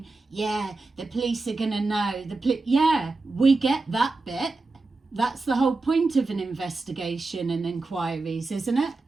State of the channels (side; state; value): left; quieter; 3.5 dB